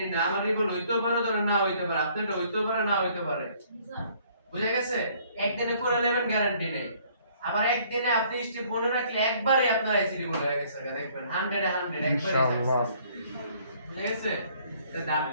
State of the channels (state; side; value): inverted; both; correlation -0.60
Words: না, আমার রিভল হইতেও পারে ধরে না হইতে পারে, আপনারটা হইতেও পারে না হইতে পারে, বুঝা গেছে? একদিনে করে নেবেন গ্যারান্টি নেই। আবার একদিনে আপনি স্টেপ মনে রাখলে একবারে আপনার আইসি রিভল হয়ে গেছে, দেখবেন 100 একবারে ইনশাআল্লাহ। বুঝা গেছে?